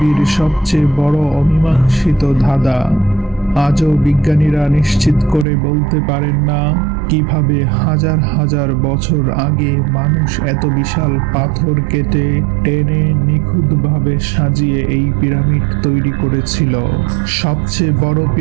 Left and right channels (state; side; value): drops out; left; at 5.5 s